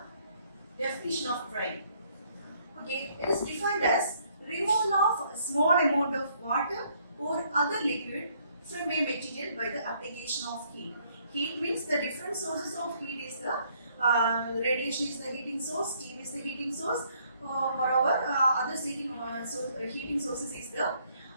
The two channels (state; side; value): inverted; both; correlation -0.67